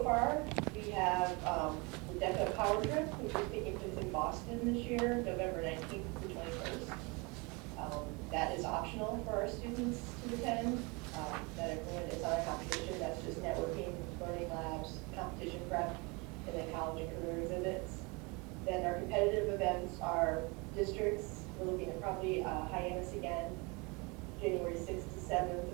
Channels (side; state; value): left; quieter; 28.4 dB